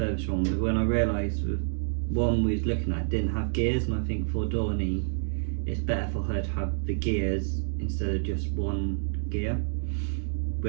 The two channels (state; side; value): silent; left; digital silence